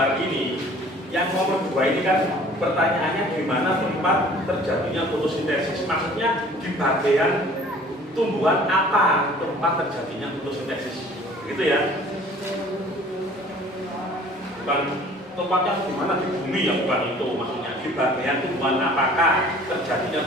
ini, yang nomor 2 ini kan pertanyaannya gimana tempat terjadinya fotosintesis. Maksudnya di bagian tumbuhan apa tempat terjadinya fotosintesis, gitu ya. Bukan tempatnya di mana, di bumi ya, bukan itu maksudnya. Di bagian tumbuhan apakah terjadinya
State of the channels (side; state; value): both; normal; correlation 0.50